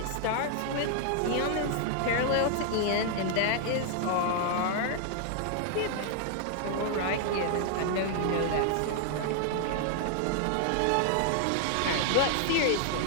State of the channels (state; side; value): different; both; correlation 0.00